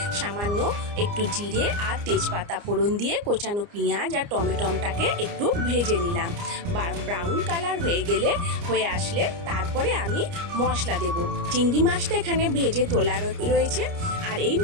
সামান্য একটু জিরে আর তেজপাতা ফোড়ন দিয়ে কোচানো পেঁয়াজ আর টমেটোটাকে একটু ভেজে নিলাম। ব্রাউন কালার হয়ে আসলে তারপরে আমি মশলা দেব। চিংড়ি মাছটা এখানে ভেজে তোলা রয়েছে, আর এই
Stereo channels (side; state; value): left; late; 29 ms